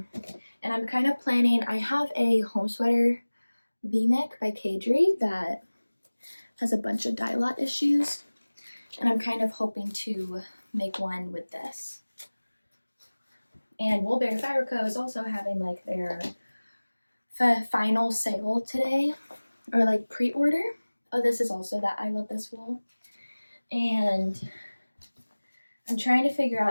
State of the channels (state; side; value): inverted; both; correlation -1.00